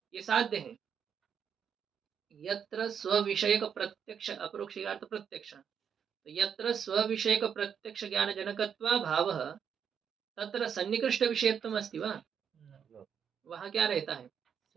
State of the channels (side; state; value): left; quieter; 7.6 dB